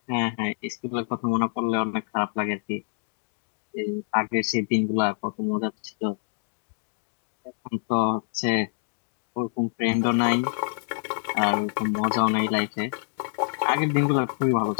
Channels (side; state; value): right; silent; digital silence